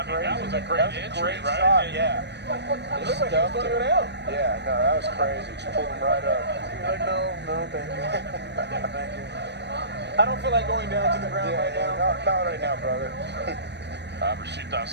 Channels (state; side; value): late; left; 0.50 ms